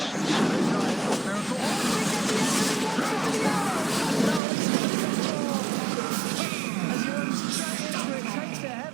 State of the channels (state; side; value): drops out; left; at 4.4 s